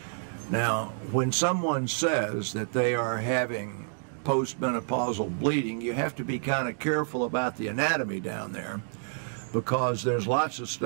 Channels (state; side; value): silent; left; digital silence